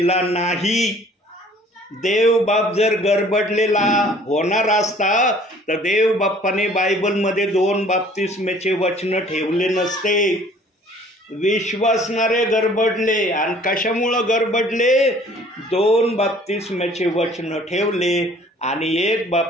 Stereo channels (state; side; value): normal; both; correlation 0.54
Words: नाही. देव बाप जर गडबडलेला होणार असता तर देव बाप्पाने बायबलमध्ये 2 बाप्तिस्म्याचे वचन ठेवले नसते. विश्वासणारे गडबडले आणि कशामुळं गडबडले? 2 बाप्तिस्म्याचे वचन ठेवले आणि 1